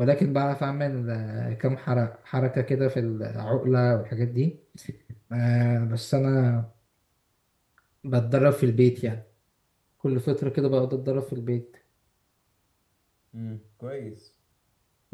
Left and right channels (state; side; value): identical; both; correlation 1.00